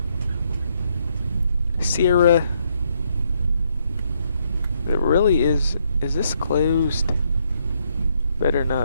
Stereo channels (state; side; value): inverted; both; correlation -0.74